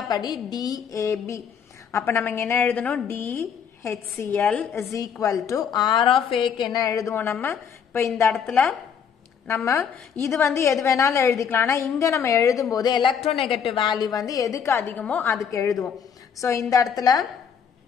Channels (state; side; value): quieter; right; 7.4 dB